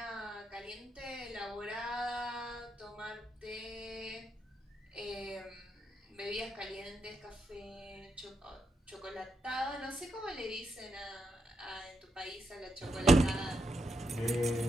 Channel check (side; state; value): both; normal; correlation 0.82